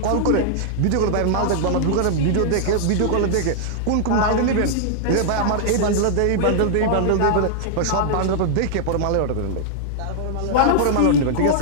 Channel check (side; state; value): both; different; correlation -0.01